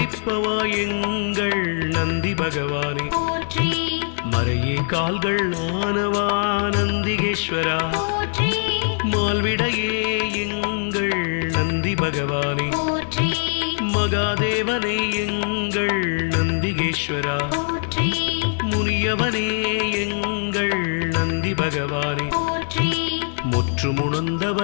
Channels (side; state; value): right; silent; 57 dB below the other